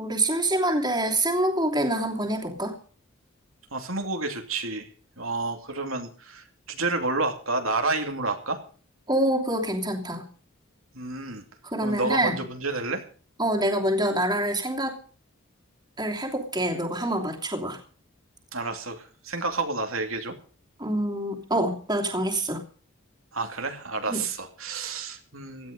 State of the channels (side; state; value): both; normal; correlation 0.22